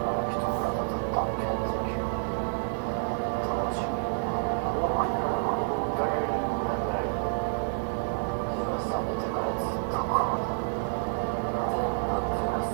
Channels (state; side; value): silent; left; 59 dB below the other